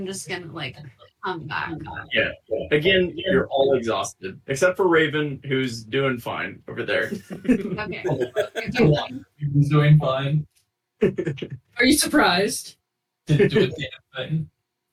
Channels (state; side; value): identical; both; correlation 1.00